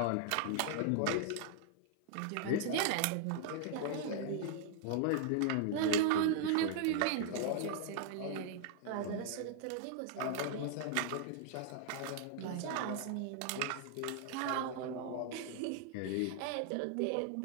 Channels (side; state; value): both; different; correlation -0.01